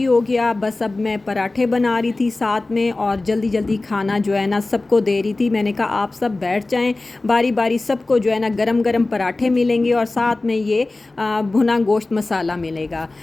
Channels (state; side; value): quieter; right; 3.1 dB